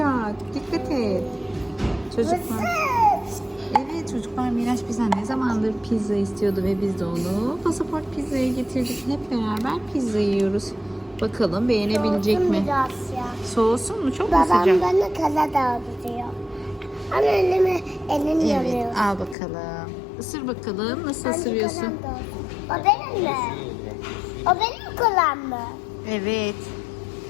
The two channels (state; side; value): drops out; right; at 19.4 s